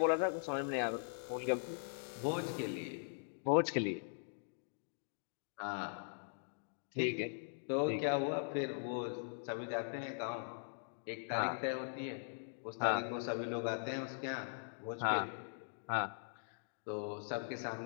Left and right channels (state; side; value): silent; right; digital silence